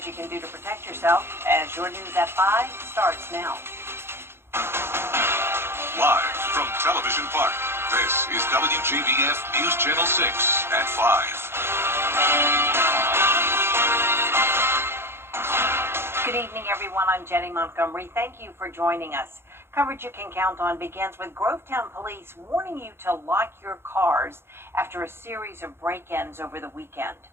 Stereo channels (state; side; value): late; left; 0.12 ms